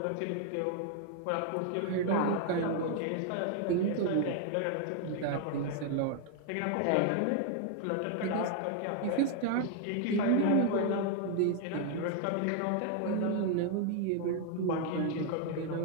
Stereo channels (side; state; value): both; different; correlation 0.00